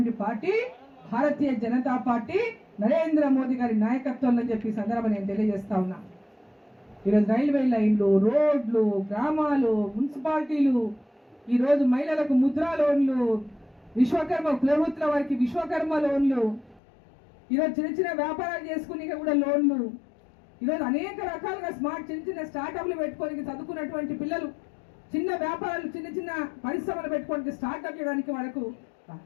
పార్టీ భారతీయ జనతా పార్టీ, నరేంద్ర మోదీ గారి నాయకత్వంలో చెప్పి సందర్భం నేను తెలియజేస్తా ఉన్నా. ఈరోజు రైల్వే లైన్లు, రోడ్లు, గ్రామాలు, మున్సిపాలిటీలు ఈరోజు మహిళలకు ముద్రా లోన్లు, విశ్వకర్మ ప్రభుత్వ వారికి విశ్వకర్మ లోన్లు, ఈరోజు చిన్న చిన్న వ్యాపారాలు చేసుకుని కూడా లోన్లు, ఈరోజు అనేక రకాలుగా చిన్న చిన్న స్టార్టప్లు పెట్టుకోనికి చదువుకున్నటువంటి పిల్లలు చిన్న వ్యాపారాలు చిన్న చిన్న పరిశ్రమలు పెట్టుకోవడానికి స్టార్ట్అప్ చేయడానికి వాళ్ళకు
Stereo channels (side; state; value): right; drops out; at 16.8 s